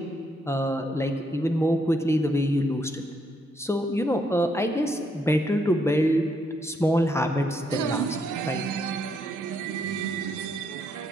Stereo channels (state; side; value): normal; both; correlation 0.75